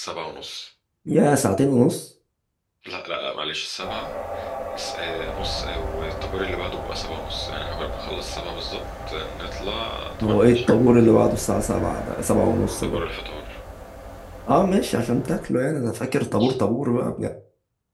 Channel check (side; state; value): both; identical; correlation 1.00